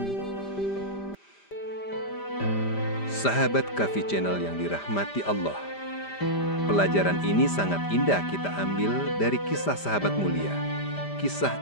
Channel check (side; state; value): right; late; 5.0 ms